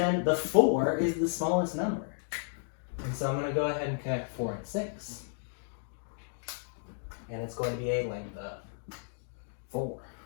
The 4 is the smallest number. And so I'm going to go ahead and connect 4 and 6. And it's going to be a length of 4.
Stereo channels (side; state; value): right; silent; digital silence